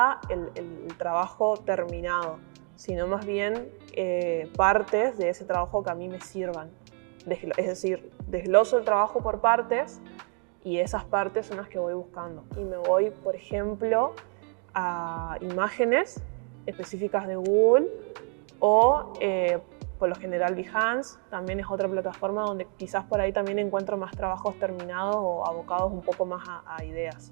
el trabajo terminado, sino más bien partes de ese trabajo que a mí me sirvan. Es decir, desgloso el trabajo por partes y esas partes son las que voy buscando. Y me voy, por ejemplo, a imágenes específicas de Google o por lo general Behance, también es otra plataforma donde quizás por ahí también encuentro más trabajos terminados o abocados un poco más a ideas.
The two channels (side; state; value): left; quieter; 37.9 dB